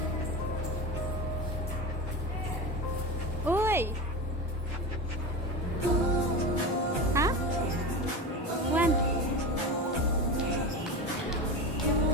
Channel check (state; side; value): normal; both; correlation 0.25